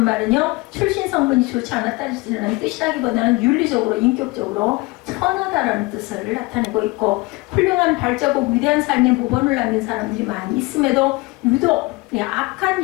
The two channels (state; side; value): quieter; right; 24.1 dB